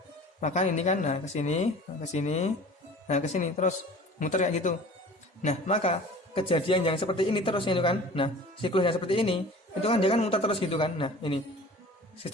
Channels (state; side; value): normal; both; correlation 0.42